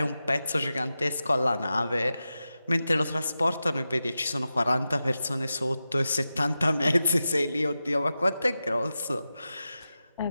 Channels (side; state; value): both; inverted; correlation -0.92